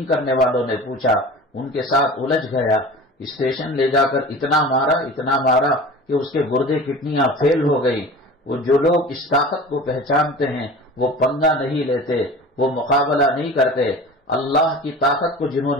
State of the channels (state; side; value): normal; both; correlation 0.37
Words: کرنے والوں نے پوچھا، ان کے ساتھ الجھ گیا، اسٹیشن لے جا کر اتنا مارا کہ اس کے گردے کڈنیاں فیل ہو گئی۔ وہ جو لوگ اس طاقت کو پہچانتے ہیں وہ پنگا نہیں لیتے، وہ مقابلہ نہیں کرتے۔ اللہ کی طاقت کو جنہوں